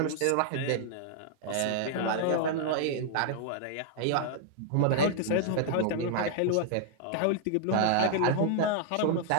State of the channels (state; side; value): different; both; correlation -0.01